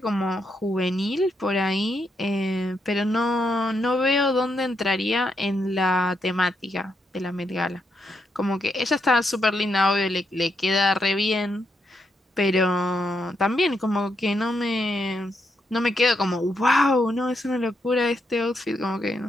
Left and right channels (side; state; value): both; normal; correlation 0.80